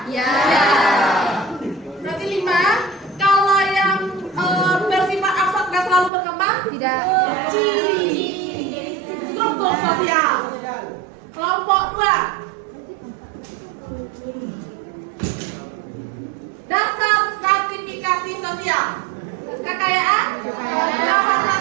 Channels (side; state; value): left; drops out; at 6.1 s